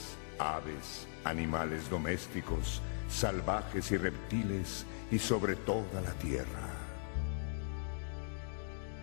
aves, animales domésticos, salvajes y reptiles, y sobre toda la tierra.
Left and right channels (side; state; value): right; silent; digital silence